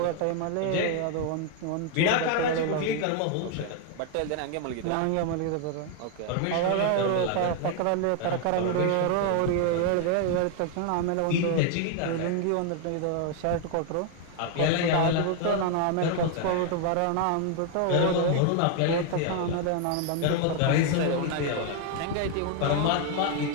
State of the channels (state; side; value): different; both; correlation 0.01